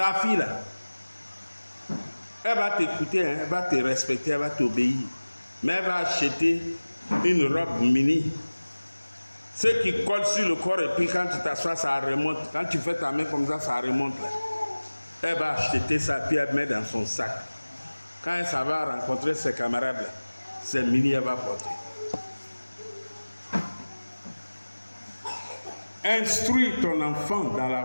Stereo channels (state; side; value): inverted; both; correlation -1.00